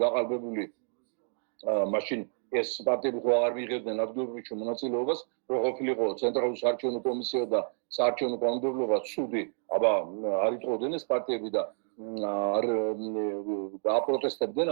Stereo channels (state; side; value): silent; left; digital silence